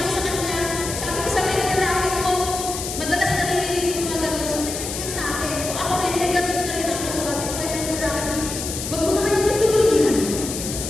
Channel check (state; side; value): noise; left; hiss, 6 dB below the sound